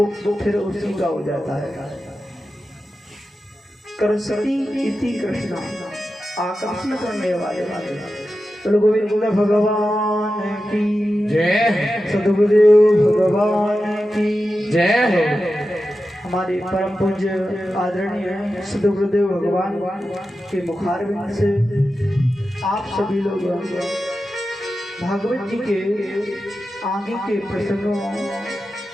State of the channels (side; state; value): both; normal; correlation 0.92